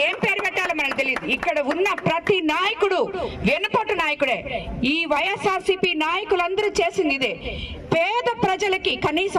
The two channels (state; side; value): identical; both; correlation 1.00